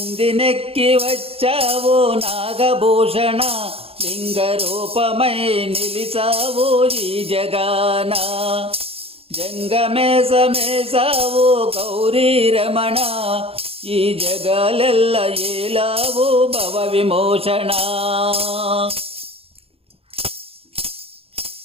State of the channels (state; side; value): late; left; 0.28 ms